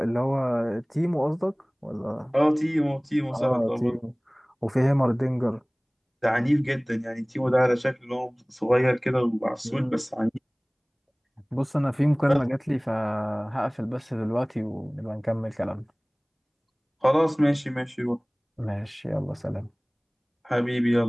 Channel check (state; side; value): identical; both; correlation 1.00